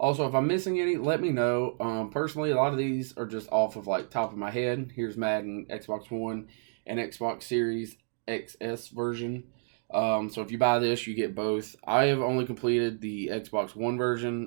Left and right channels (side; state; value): left; silent; digital silence